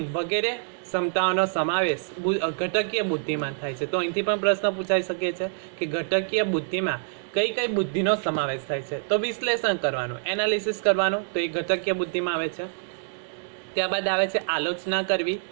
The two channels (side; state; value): left; silent; digital silence